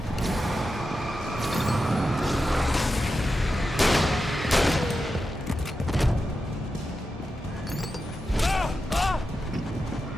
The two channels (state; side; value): normal; both; correlation 0.90